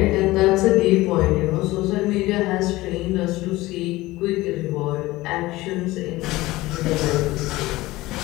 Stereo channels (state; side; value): quieter; right; 18.9 dB